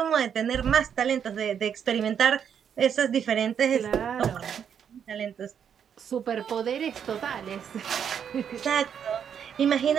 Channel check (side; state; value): left; quieter; 8.1 dB